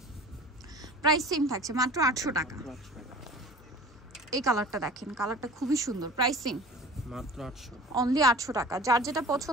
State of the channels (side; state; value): both; normal; correlation 0.41